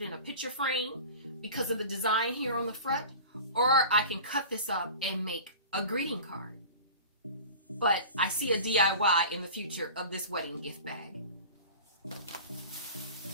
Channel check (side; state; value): both; inverted; correlation -0.37